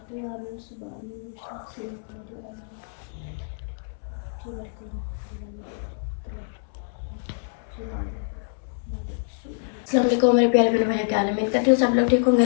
दे। आमीन सुम्मा आमीन। अस्सलाम वालेकुम मेरे प्यारे बहन भाई, क्या हाल है? उम्मीद करती हूँ सब लोग ठीक होंगे।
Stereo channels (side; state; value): right; silent; 61 dB below the other